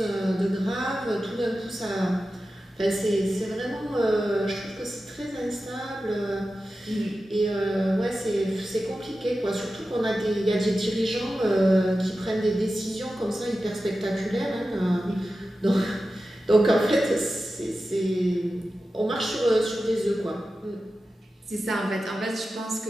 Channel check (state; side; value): normal; both; correlation 0.93